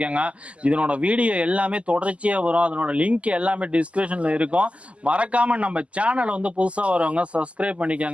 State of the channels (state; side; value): late; left; 0.061 ms